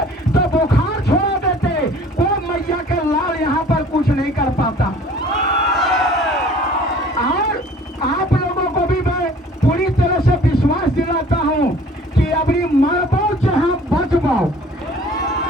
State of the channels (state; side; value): normal; both; correlation 0.50